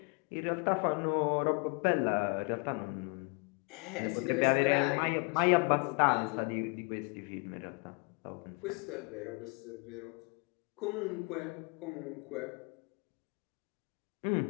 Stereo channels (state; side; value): quieter; right; 32.1 dB